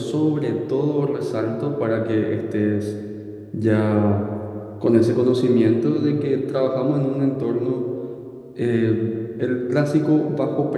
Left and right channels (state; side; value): identical; both; correlation 1.00